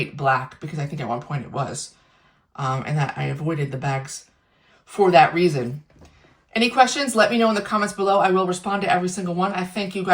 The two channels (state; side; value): identical; both; correlation 1.00